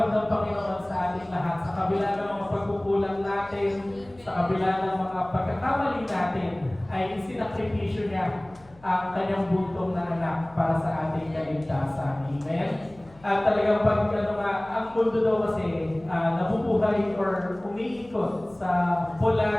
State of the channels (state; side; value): noise; left; hum, 25 dB below the sound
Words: ng Panginoon sa ating lahat. Sa kabila ng mga pagkukulang natin, sa kabila ng mga pagkakamali natin, ay isinakripisyo niya ang kanyang buntong na anak para sa ating kaligtasan. Amen? At talagang ang mundo daw kasi nabubuhay or umiikot sa